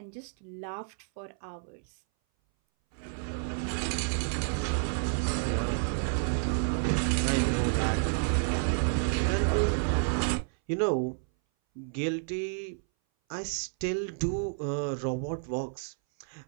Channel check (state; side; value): silent; left; 58 dB below the other